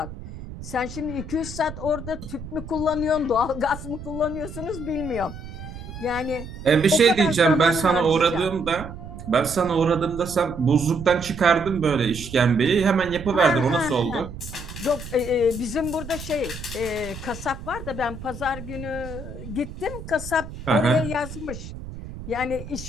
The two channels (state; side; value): noise; right; rumble, 12 dB below the sound